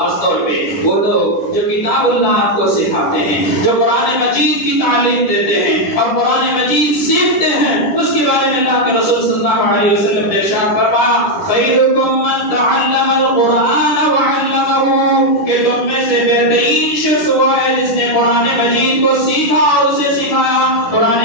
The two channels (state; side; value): late; right; 10 ms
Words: طور پہ وہ لوگ جو کتاب اللہ کو سکھاتے ہیں، جو قرآن مجید کی تعلیم دیتے ہیں اور قرآن مجید سیکھتے ہیں، اس کے بارے میں اللہ کے رسول صلی اللہ علیہ وسلم نے ارشاد فرمایا خیرکم من تعلم القرآن وعلمہ، کہ تم میں سے بہترین شخص وہ ہے جس نے قرآن مجید کو سیکھا اور اسے سکھایا، قرآن